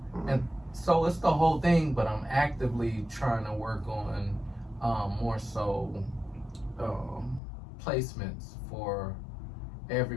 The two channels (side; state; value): right; drops out; at 7.4 s